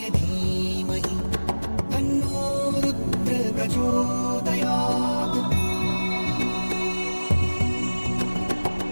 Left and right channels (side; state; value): both; inverted; correlation -1.00